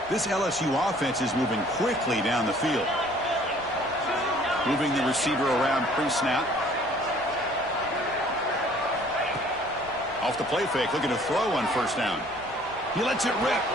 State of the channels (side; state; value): left; noise; rumble, 23 dB below the sound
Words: This LSU offense is moving quickly down the field. Moving the receiver around pre-snap. Off the play fake, looking to throw on 1st down. He lets it rip.